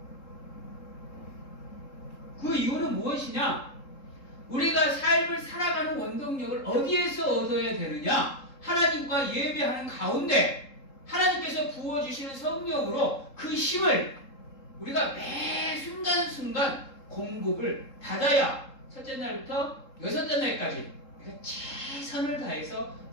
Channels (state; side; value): late; right; 3.7 ms